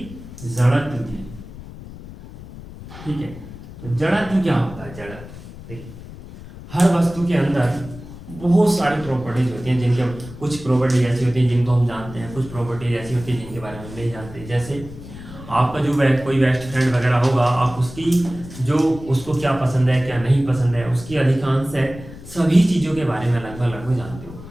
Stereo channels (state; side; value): noise; left; rumble, 15 dB below the sound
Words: जड़त्व की। ठीक है, तो जड़त्व क्या होता है, जड़त्व देखिए हर वस्तु के अंदर बहुत सारी प्रॉपर्टीज होती हैं, जिनके कुछ प्रॉपर्टीज ऐसी होती हैं जिनको हम जानते हैं, कुछ प्रॉपर्टीज ऐसी होती हैं जिनके बारे में नहीं जानते। जैसे आपका जो कोई बेस्ट फ्रेंड वगैरह होगा, आप उसकी जो उसको क्या पसंद है क्या नहीं पसंद है, उसकी अधिकांश है सभी चीज़ों के बारे में लगभग जानते हो,